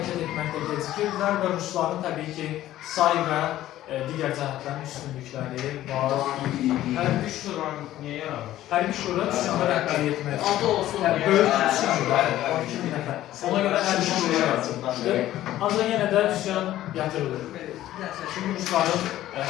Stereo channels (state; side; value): quieter; right; 13.9 dB